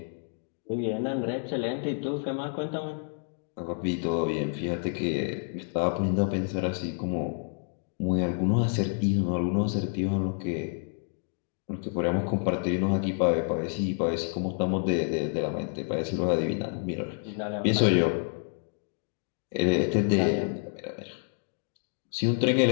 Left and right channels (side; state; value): right; silent; 59 dB below the other